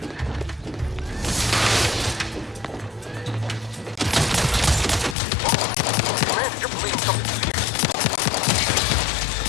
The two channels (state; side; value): drops out; right; at 5.2 s